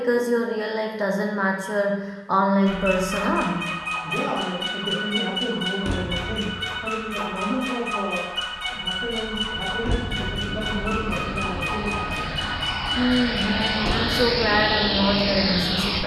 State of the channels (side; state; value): both; identical; correlation 1.00